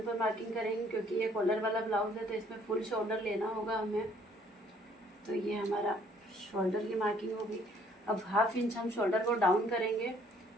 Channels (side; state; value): both; normal; correlation 0.62